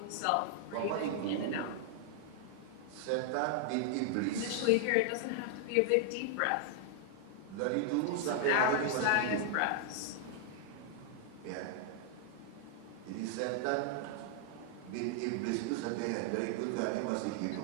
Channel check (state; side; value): different; both; correlation 0.00